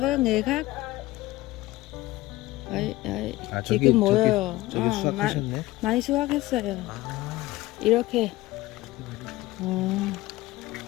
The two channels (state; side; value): quieter; right; 18.1 dB